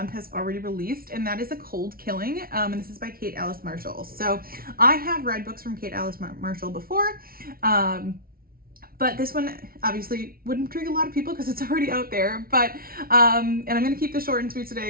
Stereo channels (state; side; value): late; left; 0.43 ms